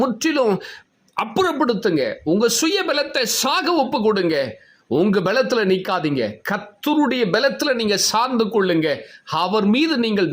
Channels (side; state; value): both; identical; correlation 1.00